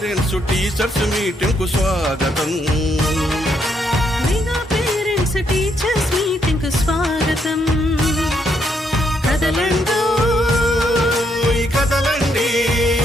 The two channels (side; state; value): both; normal; correlation 0.75